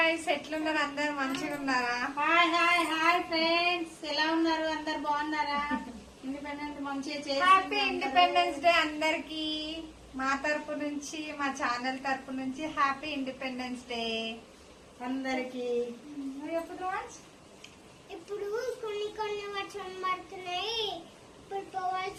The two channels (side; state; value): both; identical; correlation 1.00